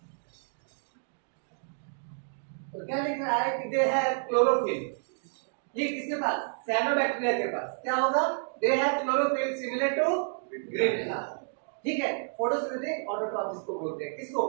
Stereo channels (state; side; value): silent; left; digital silence